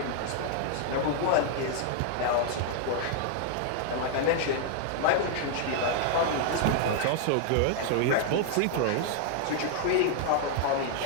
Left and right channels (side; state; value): both; different; correlation 0.00